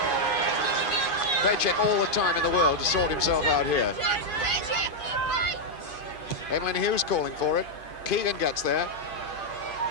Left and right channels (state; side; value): late; right; 2.5 ms